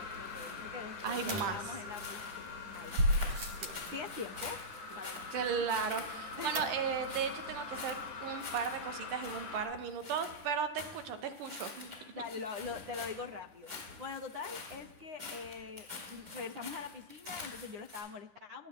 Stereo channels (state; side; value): late; left; 10 ms